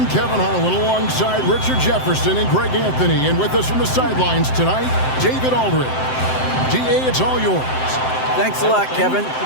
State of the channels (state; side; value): late; right; 7.7 ms